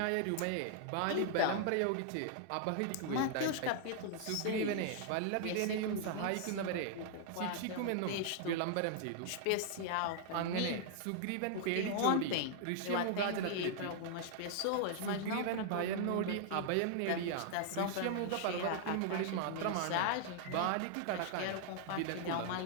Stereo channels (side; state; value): both; different; correlation -0.01